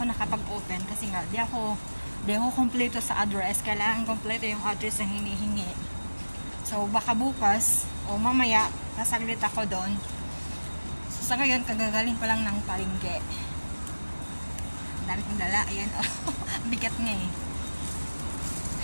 nakapag-open kasi nga, di ako kompleto sa address. Kailangan kompleto yung address na hinihingi. So, baka bukas o mamaya, nasaglit ako doon. So, sa ngayon, kagagaling pa lang ng palengke. Ang dami kong dala. Ayan, oh. Bigat nga eh.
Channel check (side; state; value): both; inverted; correlation -1.00